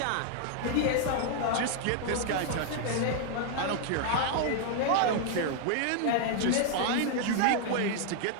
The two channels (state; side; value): different; both; correlation 0.00